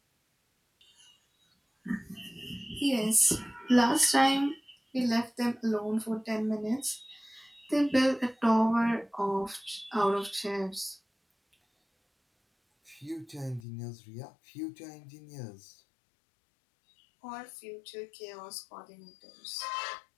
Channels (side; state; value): right; drops out; at 13.6 s